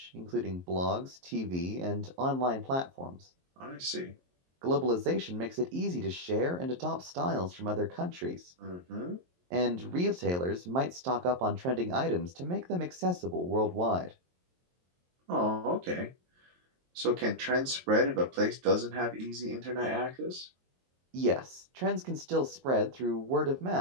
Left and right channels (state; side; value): late; left; 23 ms